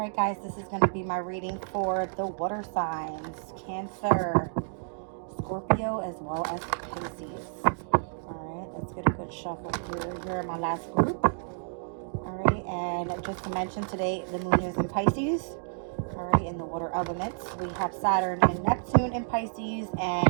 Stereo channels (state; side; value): silent; left; digital silence